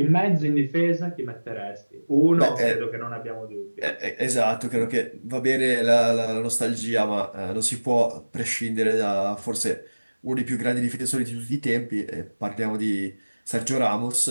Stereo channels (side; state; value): both; inverted; correlation -1.00